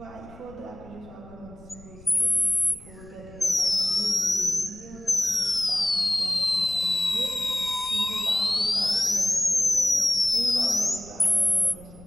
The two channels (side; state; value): left; noise; rumble, 21 dB below the sound